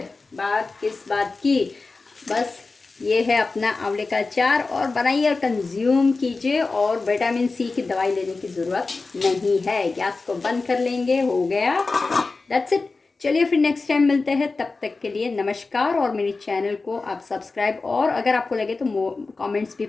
बात किस बात की, बस ये है अपना आंवले का अचार, और बनाइए और कंज्यूम कीजिए, और विटामिन सी की दवाई लेने की ज़रूरत नहीं है। गैस को बंद कर लेंगे, हो गया, दैट्स इट। चलिए फिर नेक्स्ट टाइम मिलते हैं, तब तक के लिए नमस्कार। और मेरे चैनल को आप सब्सक्राइब और अगर आपको लगे तो कमेंट्स भी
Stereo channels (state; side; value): quieter; right; 3.8 dB